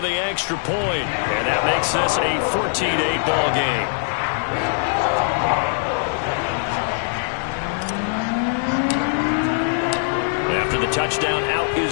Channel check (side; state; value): right; silent; digital silence